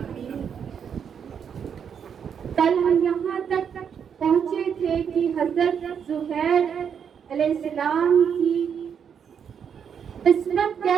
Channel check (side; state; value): left; quieter; 7.5 dB